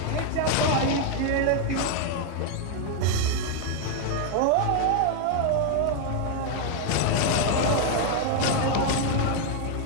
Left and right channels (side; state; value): both; different; correlation 0.00